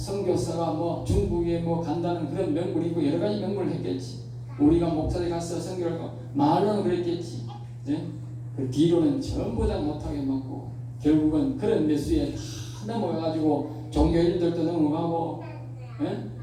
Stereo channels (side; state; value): both; identical; correlation 1.00